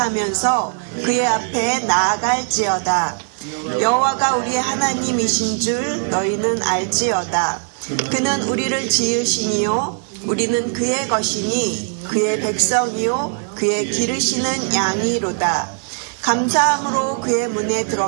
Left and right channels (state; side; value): silent; left; 66 dB below the other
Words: 그의 앞에 나아갈지어다. 여호와가 우리의 하나님이신 줄 너희는 알지어다. 그는 우리를 지으시니요 우리는 그의 것이니 그의 백성이요 그의 기르시는 양이로다. 감사함으로 그의 문에